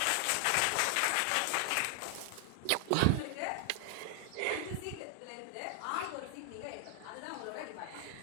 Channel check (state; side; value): different; both; correlation 0.00